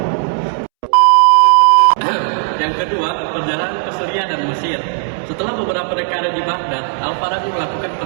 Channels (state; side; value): silent; left; 70 dB below the other